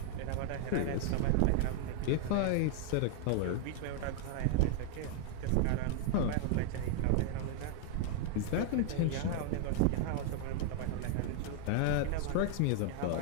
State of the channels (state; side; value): different; both; correlation 0.00